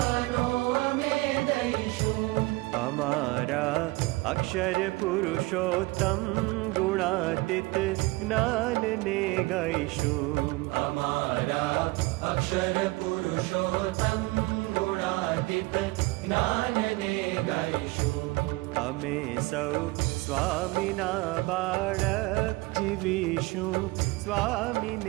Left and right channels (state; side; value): quieter; left; 22.1 dB